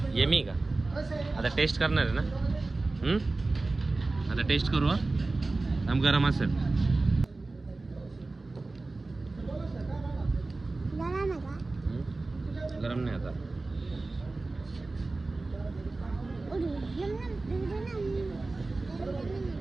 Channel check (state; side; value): quieter; left; 3.3 dB